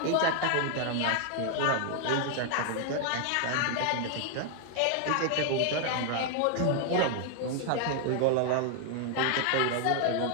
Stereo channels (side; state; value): both; different; correlation 0.00